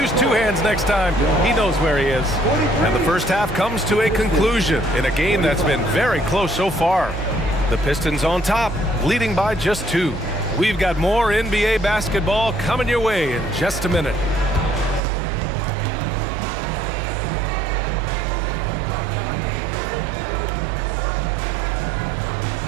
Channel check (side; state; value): left; drops out; at 15.0 s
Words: two hands next time. He knows where he is. And the first half comes to a conclusion in a game that's been very close so far. The Pistons on top, leading by just 2. We've got more NBA basketball coming your way in just a minute.